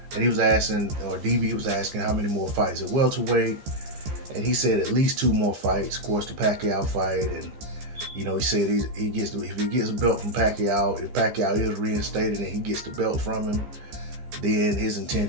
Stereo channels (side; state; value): left; late; 15 ms